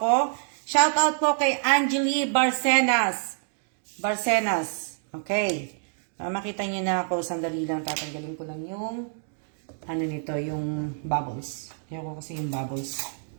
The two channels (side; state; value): left; silent; digital silence